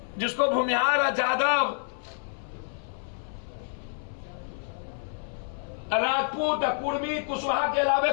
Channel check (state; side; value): silent; right; 59 dB below the other